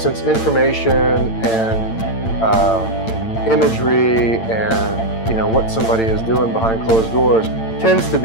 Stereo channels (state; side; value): late; right; 8.9 ms